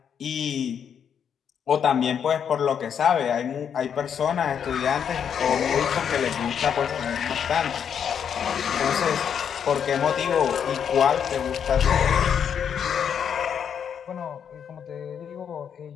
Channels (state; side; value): quieter; right; 8.0 dB